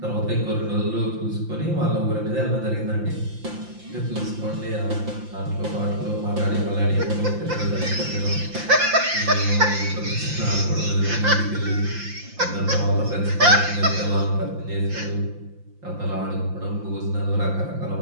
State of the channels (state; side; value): late; left; 5.8 ms